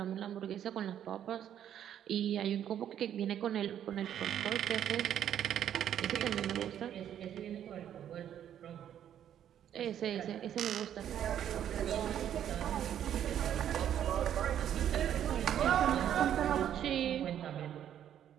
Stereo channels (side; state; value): left; quieter; 10.2 dB